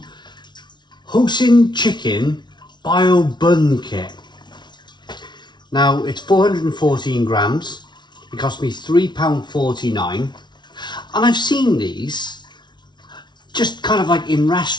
Hoisin chicken Bao Bun kit. Now it's 414 grams. It cost me £3.49, and I've seen these just kind of like in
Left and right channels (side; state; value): right; late; 0.21 ms